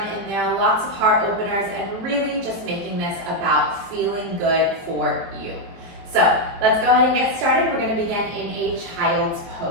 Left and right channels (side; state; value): left; late; 23 ms